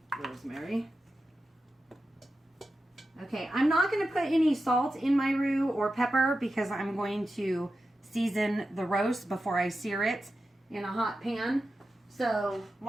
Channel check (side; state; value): both; normal; correlation 0.91